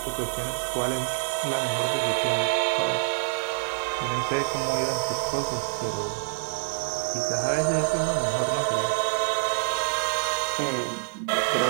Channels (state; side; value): silent; left; digital silence